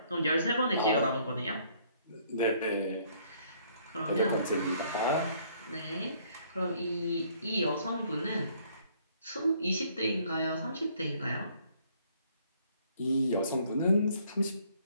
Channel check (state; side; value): inverted; both; correlation -0.63